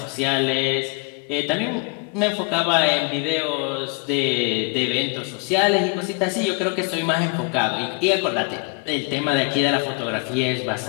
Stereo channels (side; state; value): right; quieter; 32.0 dB